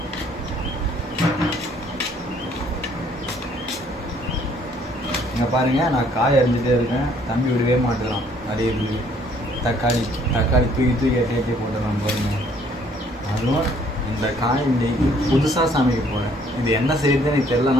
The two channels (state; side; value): normal; both; correlation 0.62